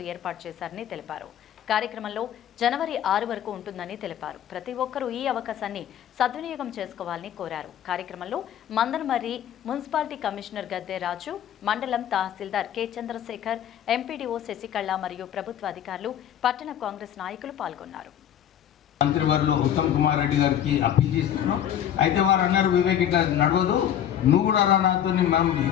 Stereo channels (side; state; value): right; quieter; 10.2 dB